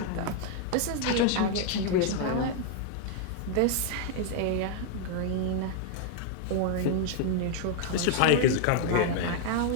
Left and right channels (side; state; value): both; different; correlation 0.00